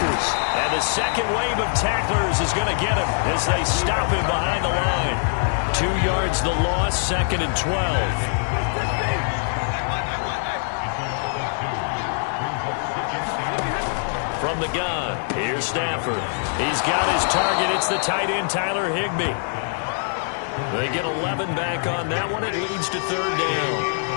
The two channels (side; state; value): right; silent; digital silence